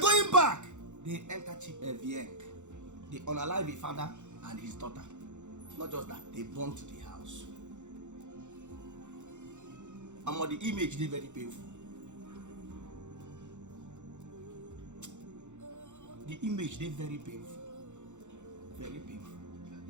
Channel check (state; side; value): late; left; 0.84 ms